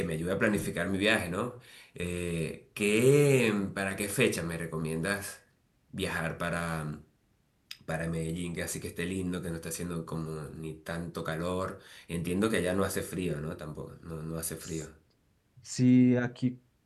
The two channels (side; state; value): both; identical; correlation 1.00